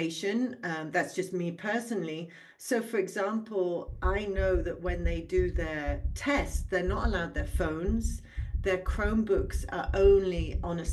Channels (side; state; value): both; identical; correlation 1.00